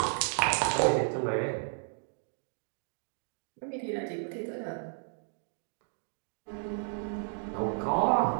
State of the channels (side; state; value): left; silent; 56 dB below the other